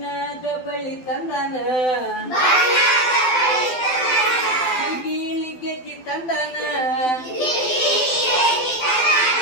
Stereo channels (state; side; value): late; right; 12 ms